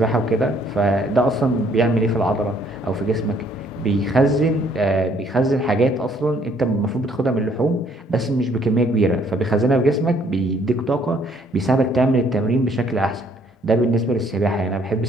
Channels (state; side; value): normal; both; correlation 0.64